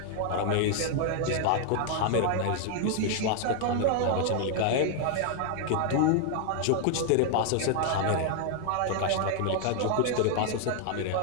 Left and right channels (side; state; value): both; different; correlation 0.00